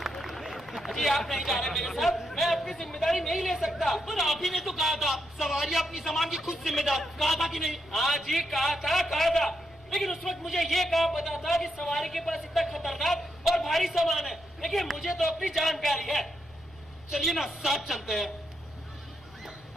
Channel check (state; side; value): noise; left; rumble, 26 dB below the sound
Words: अजी आप नहीं जा रहे मेरे साथ, मैं अपनी जिम्मेदारी नहीं ले सकता। पर आप ही ने तो कहा था सवारी अपनी सामान की खुद जिम्मेदार, कहा था कि नहीं? हाँ जी कहा था, लेकिन उस वक्त मुझे ये कहा पता था कि सवारी के पास इतना खतरनाक और भारी सामान है, लेकिन मुझे तो अपनी जान प्यारी है। चलिए ना साथ चलते हैं।